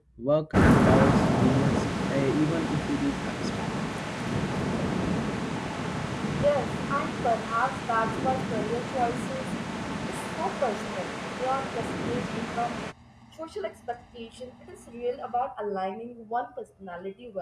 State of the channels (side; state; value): both; identical; correlation 1.00